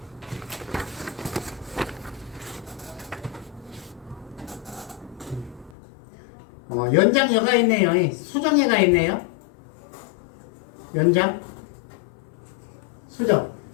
한번 연장여가 있네요. 수정예가 있네요. 연장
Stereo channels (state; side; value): drops out; right; at 5.8 s